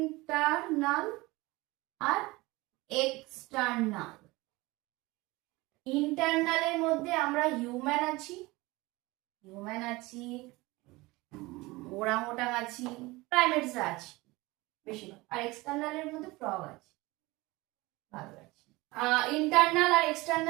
আর এক্সটার্নাল। ইন্টারনালের মধ্যে আমরা হিউম্যান আছি, ওরাংওটাং আছি, প্রাইমেটসরা আছে বেশিরভাগ। আর এক্সটার্নালের মধ্যে ফ্রগ আছে, ভালো আছে। ইন্টারনাল আর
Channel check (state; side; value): quieter; left; 21.9 dB